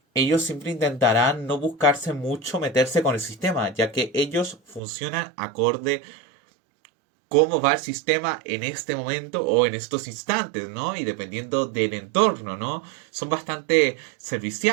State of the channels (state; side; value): drops out; left; at 4.8 s